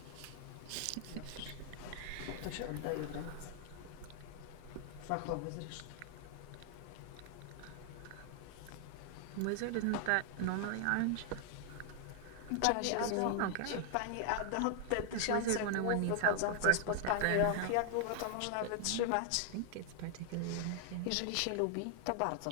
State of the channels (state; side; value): different; both; correlation 0.00